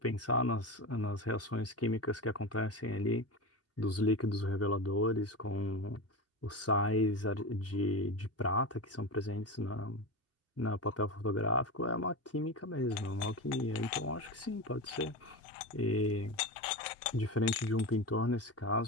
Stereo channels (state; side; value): normal; both; correlation 0.23